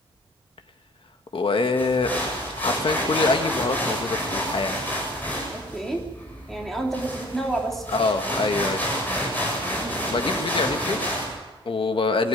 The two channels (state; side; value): normal; both; correlation 0.49